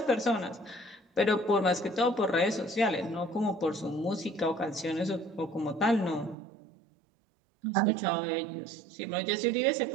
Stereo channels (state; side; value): drops out; left; at 6.4 s